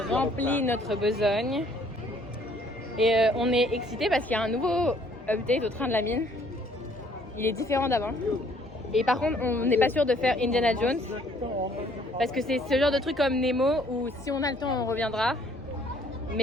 rempli notre besogne. Et on est excités parce qu'il y a un nouveau update au train de la mine. Il est différent d'avant. Et par contre, on n'est pas sûr de faire Indiana Jones. Parce que c'est ce genre de truc comme Nemo où si on a le temps, on reviendra.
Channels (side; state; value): both; normal; correlation 0.61